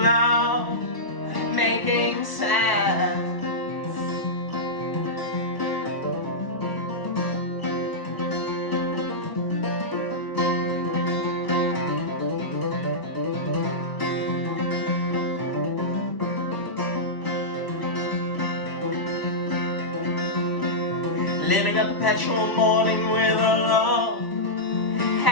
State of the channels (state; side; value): late; right; 1.0 ms